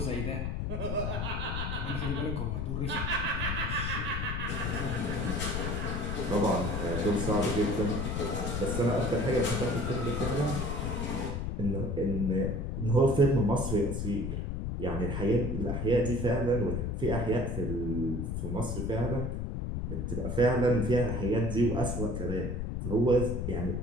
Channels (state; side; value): noise; left; rumble, 2 dB below the sound